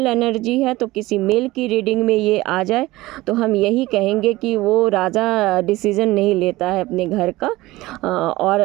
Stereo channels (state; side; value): quieter; left; 18.8 dB